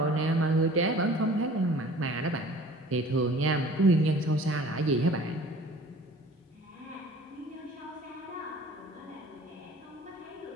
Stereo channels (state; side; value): normal; both; correlation 0.47